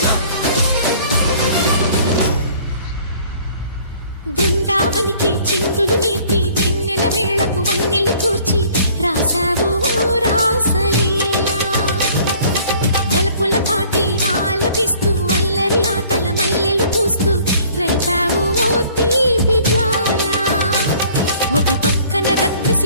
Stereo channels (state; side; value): inverted; both; correlation -0.54